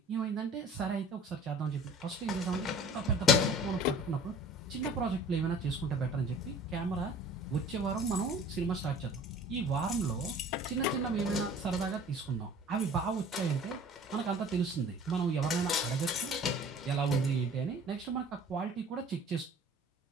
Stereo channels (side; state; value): both; normal; correlation 0.47